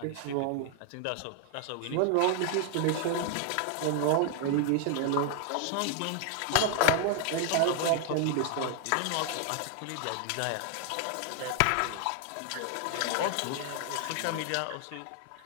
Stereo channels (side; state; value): both; different; correlation 0.00